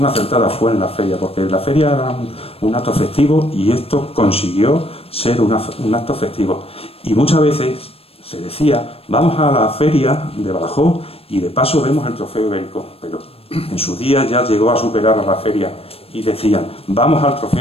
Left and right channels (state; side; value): late; right; 0.28 ms